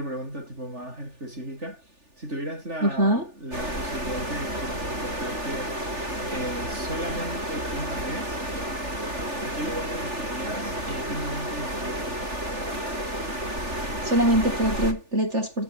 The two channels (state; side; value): late; left; 3.4 ms